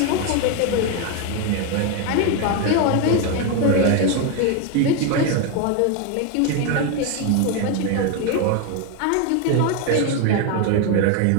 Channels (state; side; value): different; both; correlation 0.01